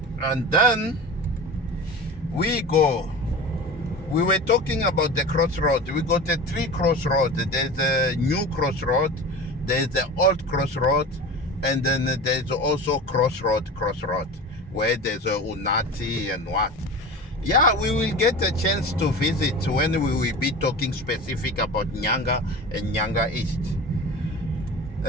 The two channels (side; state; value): both; normal; correlation 0.32